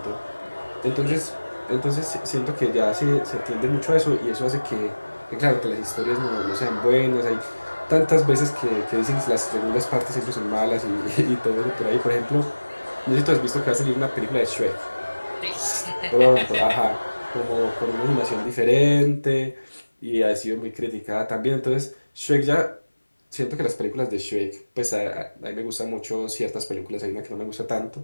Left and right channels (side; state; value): both; inverted; correlation -1.00